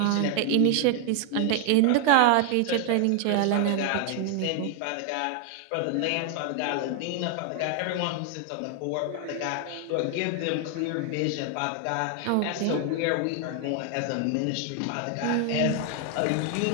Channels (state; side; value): different; both; correlation 0.00